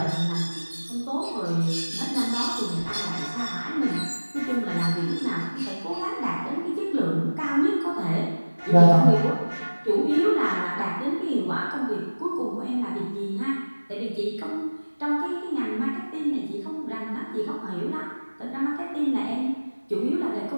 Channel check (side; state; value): both; inverted; correlation -1.00